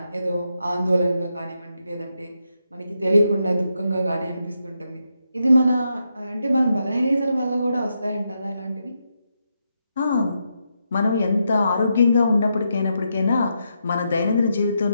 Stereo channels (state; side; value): inverted; both; correlation -0.83